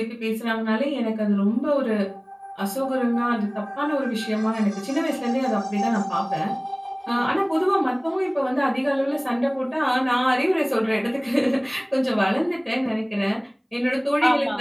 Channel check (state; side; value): identical; both; correlation 1.00